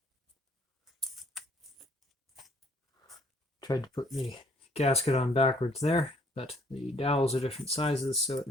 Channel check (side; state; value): both; normal; correlation 0.62